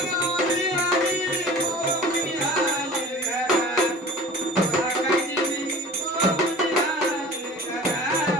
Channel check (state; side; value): normal; both; correlation 0.42